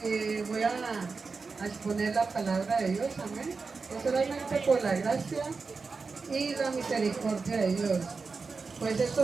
voy a exponer la palabra de Dios, amén. Es solamente por la gracia y la misericordia de Dios. Pues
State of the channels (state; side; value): quieter; left; 4.5 dB